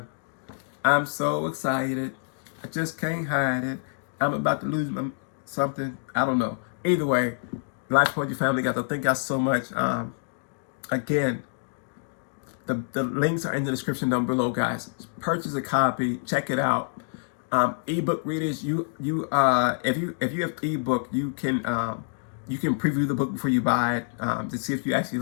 I'm so excited. I just can't hide it. I'm about to lose something. I don't know. Either way, Life Poetry family, guys. Thank y'all so much. Again. The links are in the description down below, guys. Purchase a copy, check it out. Ebook readers, if you have ebook, you can preview the book before you buy it to see if you actually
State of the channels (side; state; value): right; silent; digital silence